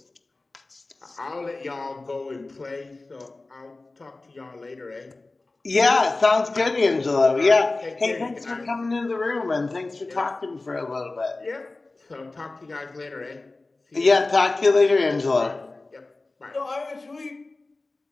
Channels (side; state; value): right; quieter; 3.3 dB